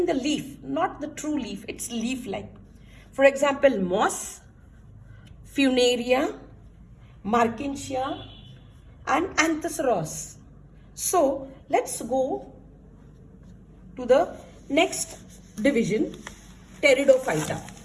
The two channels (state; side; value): identical; both; correlation 1.00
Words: the leaf, not the true leaf, it's leaf-like. For example, moss, funaria, markinsia, and anthoceros. So, let's go to the next division, Pteridophyta.